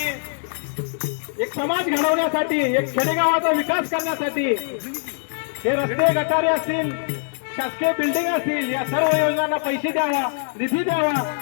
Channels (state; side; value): silent; right; digital silence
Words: एक समाज घडवण्यासाठी, एक खेडेगावाचा विकास करण्यासाठी हे रस्ते गटारे असतील, शासकीय बिल्डिंग असतील, या सर्व योजनांना पैसे द्यावा, निधी द्यावा